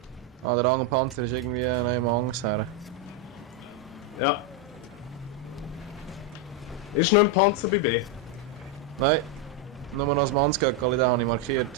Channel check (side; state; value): both; normal; correlation 0.03